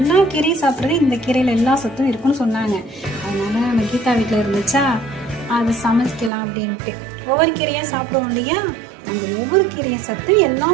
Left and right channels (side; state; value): left; drops out; at 6.3 s